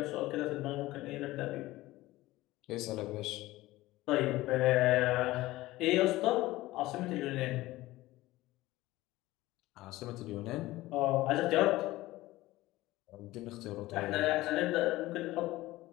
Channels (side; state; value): right; quieter; 17.8 dB